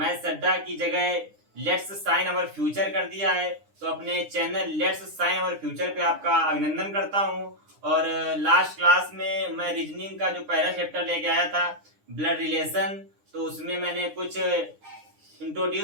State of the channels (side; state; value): left; late; 9.8 ms